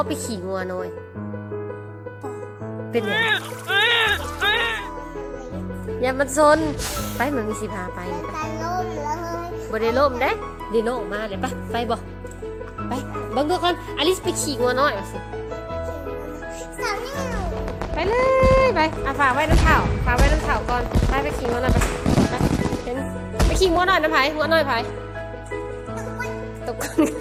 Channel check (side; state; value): both; identical; correlation 1.00